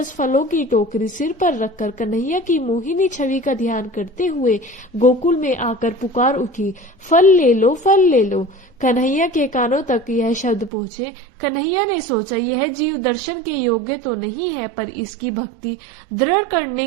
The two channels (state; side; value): drops out; left; at 10.7 s